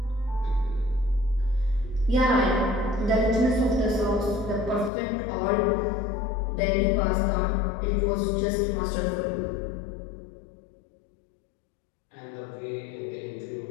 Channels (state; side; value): drops out; right; at 4.9 s